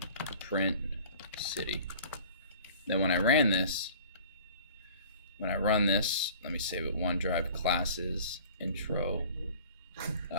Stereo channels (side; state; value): both; inverted; correlation -0.47